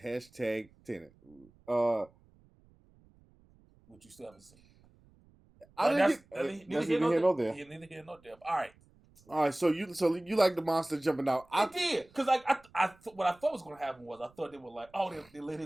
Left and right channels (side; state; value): right; noise; rumble, 29 dB below the sound